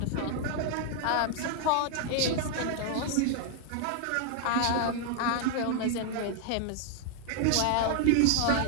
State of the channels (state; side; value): different; both; correlation 0.00